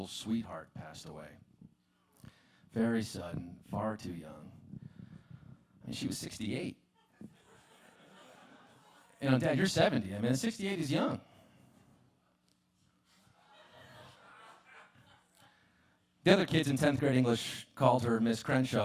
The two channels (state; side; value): identical; both; correlation 1.00